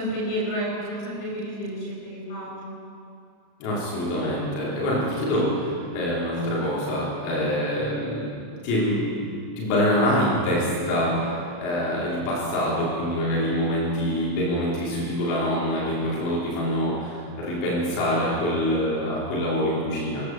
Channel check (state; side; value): late; right; 35 ms